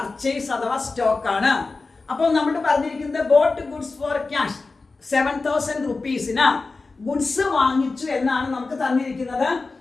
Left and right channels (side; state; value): right; quieter; 3.8 dB